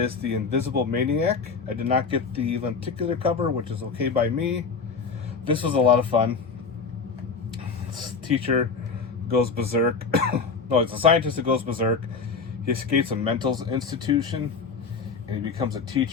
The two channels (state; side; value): quieter; right; 5.0 dB